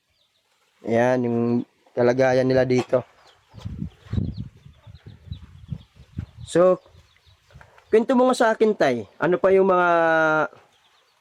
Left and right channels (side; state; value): both; identical; correlation 1.00